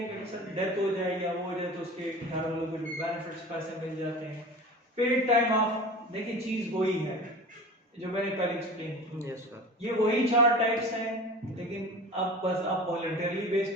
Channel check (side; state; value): both; normal; correlation 0.36